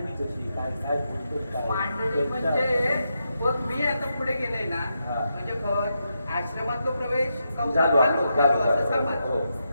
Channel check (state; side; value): inverted; both; correlation -0.85